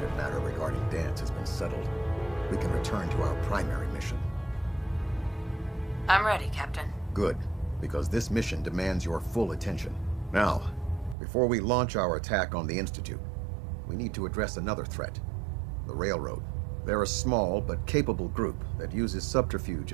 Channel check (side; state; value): left; drops out; at 11.2 s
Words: matter regarding Dance has been settled, we can return to our primary mission. I'm ready, Captain. Good, because this mission demands your full attention. Now, before we launch our attack on the Institute, we need to address another threat, the Railroad. They're a small but capable group that uses subterfuge